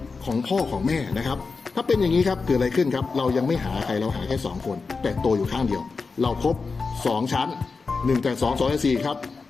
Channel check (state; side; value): quieter; right; 4.5 dB